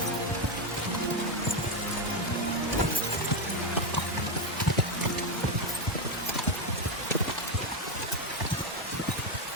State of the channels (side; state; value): both; normal; correlation 0.07